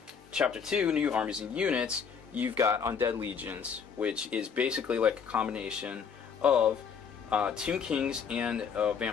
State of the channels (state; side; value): quieter; right; 6.6 dB